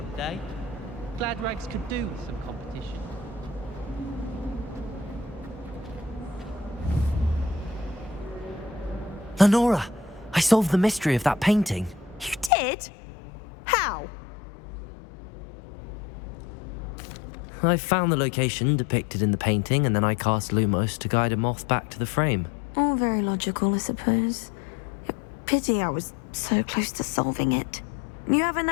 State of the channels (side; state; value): right; drops out; at 12.5 s